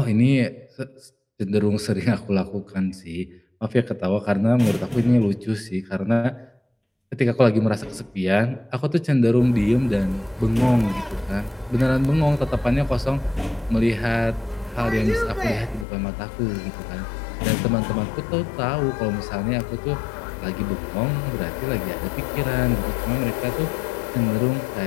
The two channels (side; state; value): right; drops out; at 15.9 s